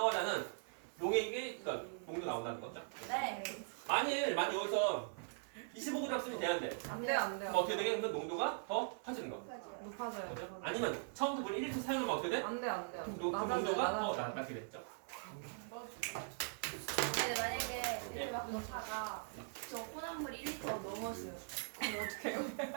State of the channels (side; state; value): left; silent; 50 dB below the other